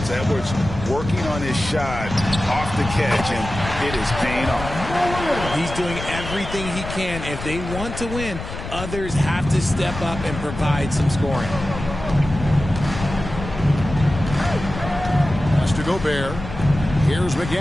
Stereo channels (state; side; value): noise; left; rumble, 9 dB below the sound